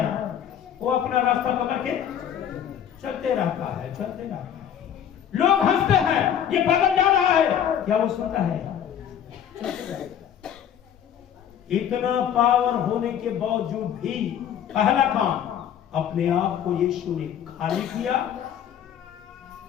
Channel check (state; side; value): quieter; right; 9.4 dB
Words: वो अपना रास्ता पकड़ के चलते रहता है, चलते रहता है। लोग हंसते हैं, ये पागल जा रहा है, क्या वो सुनता है? चलते रहता है। इतना पावर होने के बावजूद भी पहला काम अपने आप को यीशु ने खाली किया,